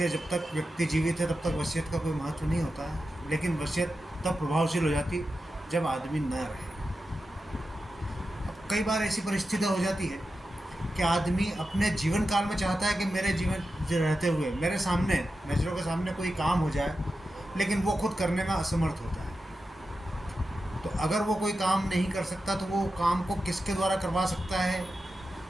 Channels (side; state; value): both; normal; correlation 0.91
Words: जब तक व्यक्ति जीवित है तब तक वसीयत का कोई महत्व नहीं होता है। लेकिन वसीयत तब प्रभावशील हो जाती जब आदमी न रहे। अब कई बार ऐसी परिस्थिति हो जाती है कि आदमी अपने जीवन काल में चाहता है कि मेरे जीवन रहते हुए मेरे सामने, नज़रों के सामने कोई काम हो जाए, लेकिन वो खुद करने में असमर्थ होता है। तो अगर वो कोई काम नहीं कर सकता तो वो काम को किसके द्वारा करवा सकता है?